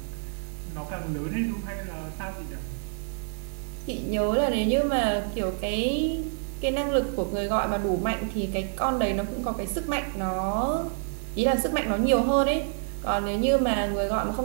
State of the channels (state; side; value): silent; left; digital silence